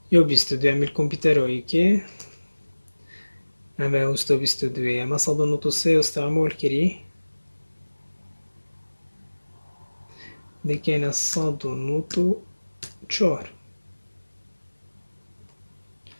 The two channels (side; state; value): both; inverted; correlation -1.00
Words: Io ho visto due mil computeroi che avevo sto visto due ma sono venuto se io stavo molkiri de che ne sono venuto چهار